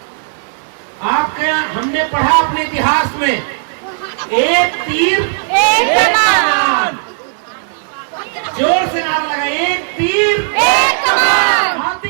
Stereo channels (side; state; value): left; silent; digital silence